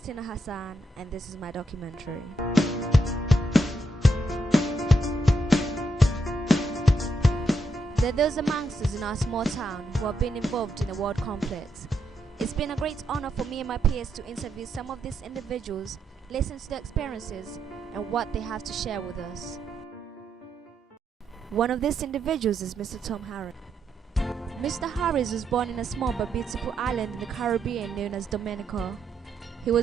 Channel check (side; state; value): both; normal; correlation 0.80